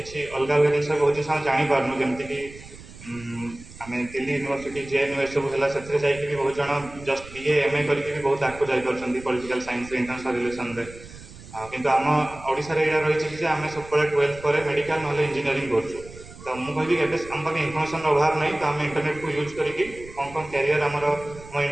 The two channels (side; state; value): right; noise; rumble, 17 dB below the sound